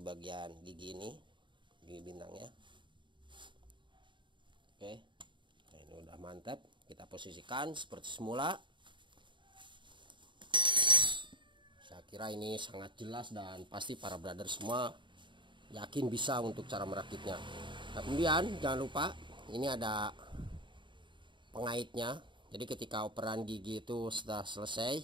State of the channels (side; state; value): left; late; 0.23 ms